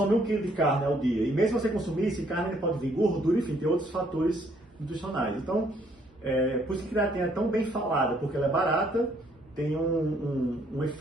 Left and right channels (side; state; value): both; normal; correlation 0.66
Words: 1 kg de carne ao dia? E mesmo se você consumir, esse carne pode vir gordura, enfim, tem outros fatores nutricionais. Então, por isso que a creatina é tão bem falada, porque ela é barata, tem um